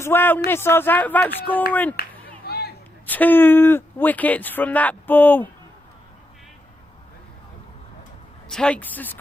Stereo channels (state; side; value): normal; both; correlation 0.83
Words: well. Nisar's out without scoring. 2 wickets from that ball. Takes the